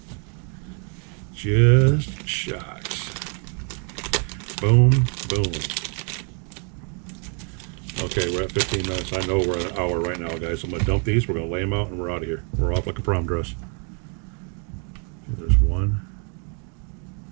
Just shocks. Boom, boom. Okay, we're at 15 minutes. I know we're at an hour right now, guys. I'm going to dump these. We're going to lay them out, and we're out of here. We're off like a prom dress. Okay, there's one.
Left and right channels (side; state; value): left; quieter; 39.2 dB